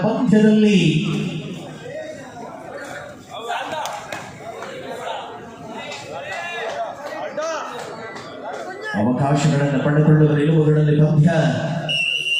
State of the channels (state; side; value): identical; both; correlation 1.00